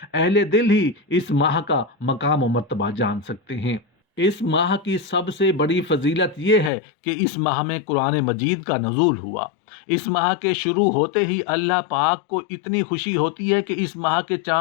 اہل دل ہی اس ماہ کا مقام و مرتبہ جان سکتے ہیں۔ اس ماہ کی سب سے بڑی فضیلت یہ ہے کہ اس ماہ میں قرآن مجید کا نزول ہوا۔ اس ماہ کے شروع ہوتے ہی اللہ پاک کو اتنی خوشی ہوتی ہے کہ اس ماہ کے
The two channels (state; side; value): drops out; right; at 6.7 s